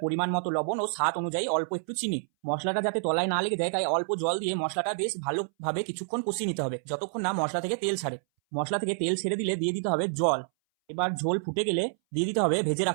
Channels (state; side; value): silent; left; 59 dB below the other